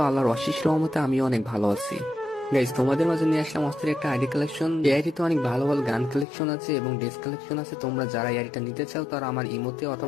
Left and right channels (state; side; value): drops out; right; at 6.2 s